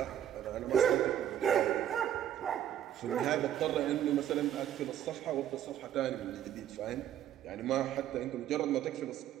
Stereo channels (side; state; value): left; quieter; 11.0 dB